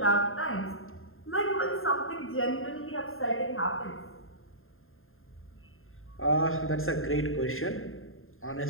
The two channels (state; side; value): late; right; 0.61 ms